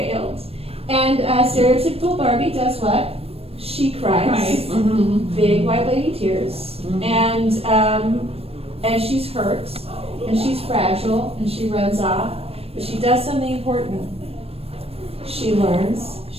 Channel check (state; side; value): late; left; 0.28 ms